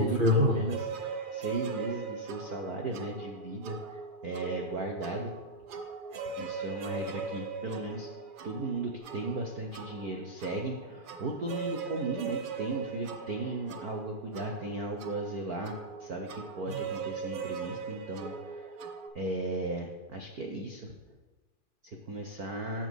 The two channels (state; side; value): late; left; 2.4 ms